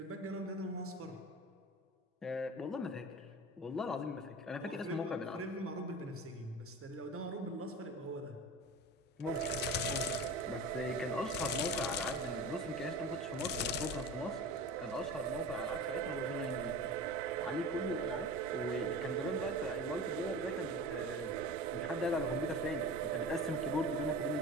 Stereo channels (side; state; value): both; normal; correlation 0.33